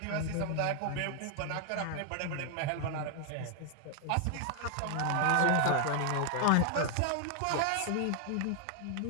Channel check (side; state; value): both; different; correlation 0.00